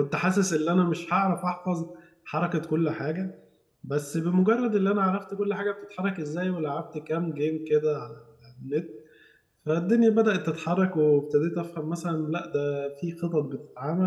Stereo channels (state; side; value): identical; both; correlation 1.00